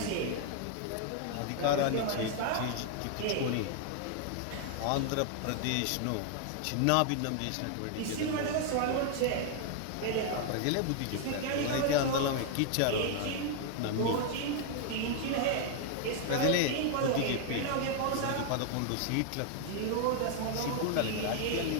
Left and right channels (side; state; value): both; different; correlation 0.00